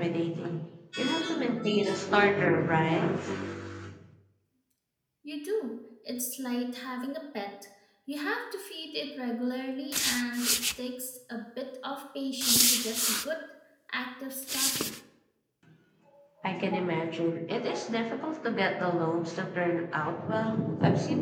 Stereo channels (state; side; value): identical; both; correlation 1.00